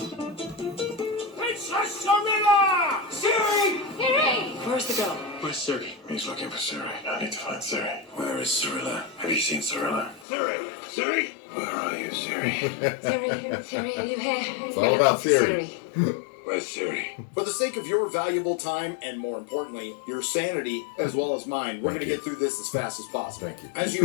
Siri! Siri! Where's the girl? Where's Siri? He's looking for Siri. I need to find Siri. Where is Cirilla? Have you seen Cirilla? Siri! Siri! Where are you, Siri? Siri, are you here? It's all about Siri. Where's Siri? For the sake of your valuable time and, more importantly, your sanity as well as mine, we're going to get through this as fast as possible. Thank you. As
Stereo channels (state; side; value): drops out; right; at 10.2 s